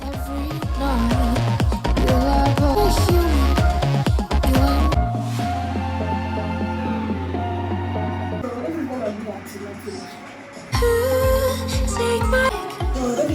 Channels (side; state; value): both; identical; correlation 1.00